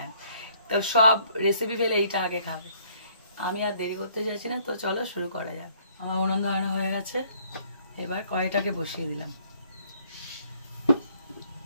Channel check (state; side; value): inverted; both; correlation -0.63